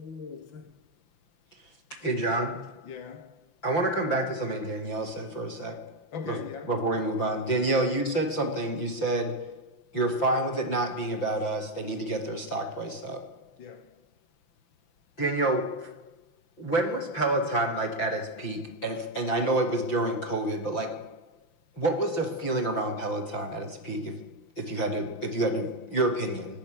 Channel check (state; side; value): late; right; 5.9 ms